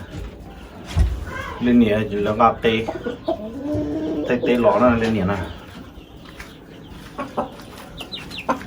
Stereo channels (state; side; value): identical; both; correlation 1.00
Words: lên nhẹ chỉ là ngáp tê tê tê lỏ nó lên nhẹ nè